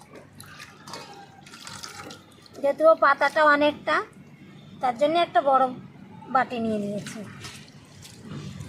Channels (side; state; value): both; identical; correlation 1.00